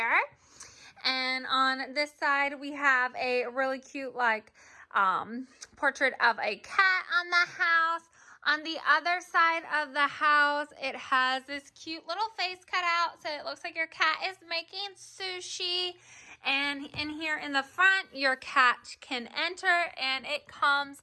And on this side we have a really cute portrait of a cat on the house. On the other side of the house, it has this cute little face cut out, so it looks like your cat is making sushi. And in here in the front, your cat can enter, and it comes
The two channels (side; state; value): both; identical; correlation 1.00